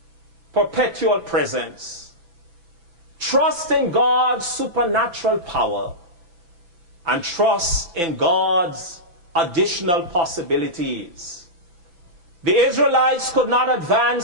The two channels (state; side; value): late; left; 5.9 ms